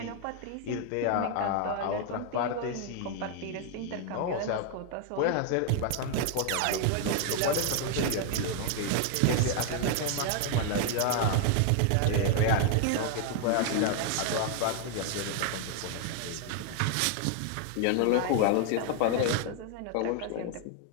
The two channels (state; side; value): different; both; correlation 0.00